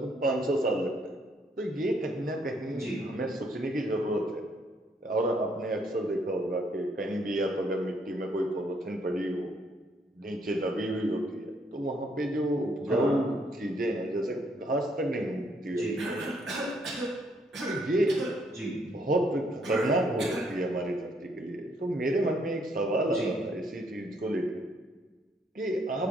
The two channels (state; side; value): normal; both; correlation 0.69